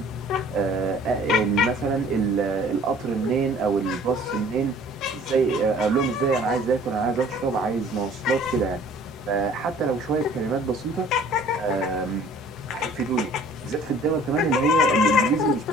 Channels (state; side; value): normal; both; correlation 0.52